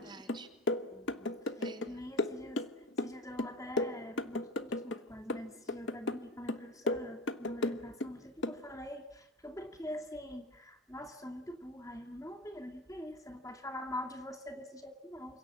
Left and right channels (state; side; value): normal; both; correlation 0.31